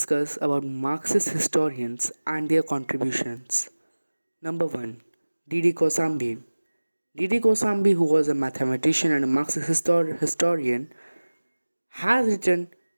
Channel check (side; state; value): both; inverted; correlation -1.00